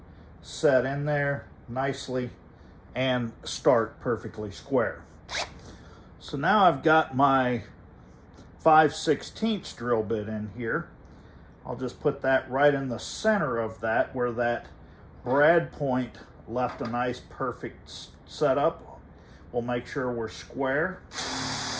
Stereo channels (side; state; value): both; identical; correlation 1.00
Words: set in there nicely and start perfectly square. So now I've got my 5/16 drill bit in here. I'll just put that right in the center of that, where that brad point left a nice perfect setup. We'll make sure we're square.